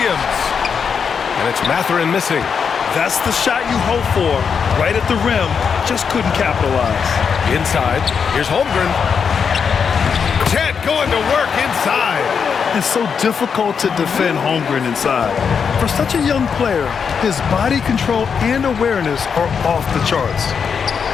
And it's Mathurin missing. That's the shot you hope for. Right at the rim, just couldn't capitalize. Inside, here's Holmgren. Chet going to work inside. It's so difficult to defend Holmgren inside. For such a young player, his body control and awareness are off the charts.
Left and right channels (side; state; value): right; quieter; 6.4 dB